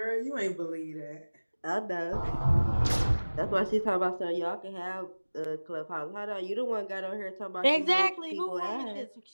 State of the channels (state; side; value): inverted; both; correlation -1.00